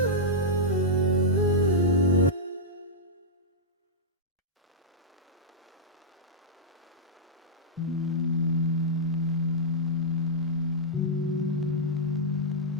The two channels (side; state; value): both; normal; correlation -0.10